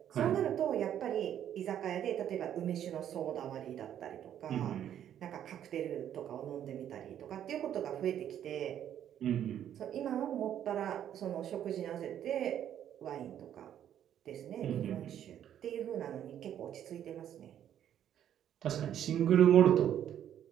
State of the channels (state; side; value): quieter; left; 10.3 dB